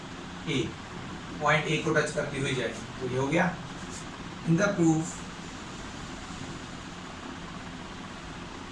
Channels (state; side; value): identical; both; correlation 1.00